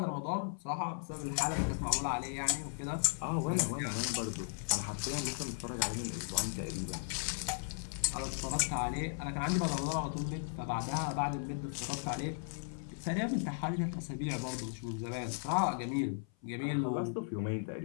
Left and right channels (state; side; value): silent; right; 53 dB below the other